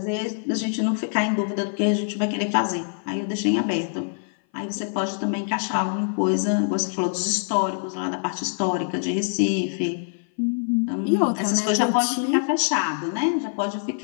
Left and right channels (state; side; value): silent; right; 58 dB below the other